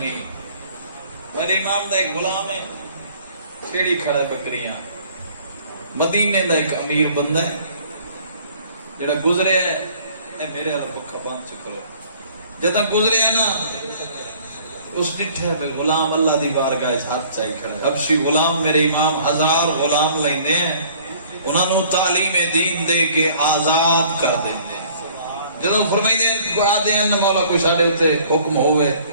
میرے امام دا ایک غلام ہے، چھیڑی کھڑا ہے بکریاں. مدینے دا ایک امیر بندہ ہے جڑا گزرے ہے، اے میرے والا پکا بند چکرو. جدا گزرے ہے نا اس ڈٹھے پہ غلام اللہ دی بارگاہ ہاتھ چاہی کھڑا ہے. حبشی غلام میرے امام 1000 غلام لیندے ہیں، انہاں نو تعلیم دین دے کے آزاد کر دیندے. جدو فرمائی دیں آدھے ہیں مولا کوئی ساڑھے ہوتے حکم ہوئے،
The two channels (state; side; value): inverted; both; correlation -0.54